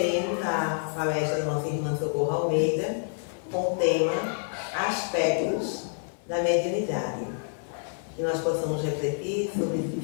a palestra da nossa irmã Socorro Almeida com o tema Aspectos da Mediunidade. Que nós possamos refletir sobre esses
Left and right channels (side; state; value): right; silent; digital silence